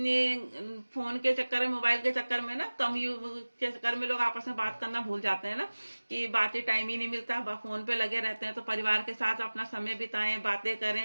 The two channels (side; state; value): both; inverted; correlation -1.00